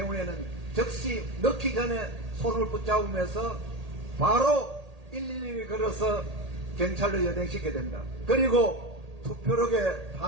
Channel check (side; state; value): left; late; 1.8 ms